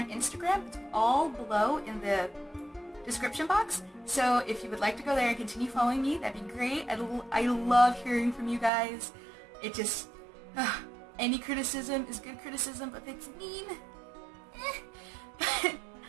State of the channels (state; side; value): drops out; left; at 8.7 s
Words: Instagram. It's all below in the description box. So if you would like to go there and continue following me, that'd be great. I love hearing from you guys. It just, any criticism is good criticism, but if it's mean,